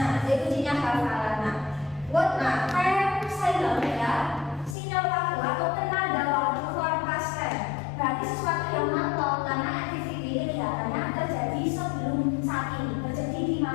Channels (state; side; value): drops out; right; at 4.8 s